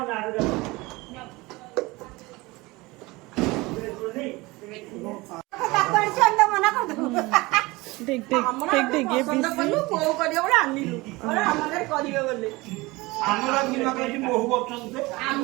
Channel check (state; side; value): quieter; left; 22.3 dB